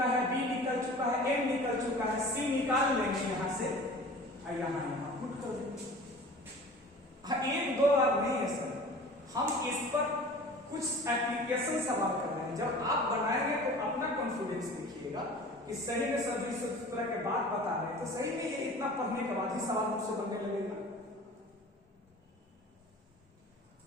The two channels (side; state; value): both; normal; correlation 0.42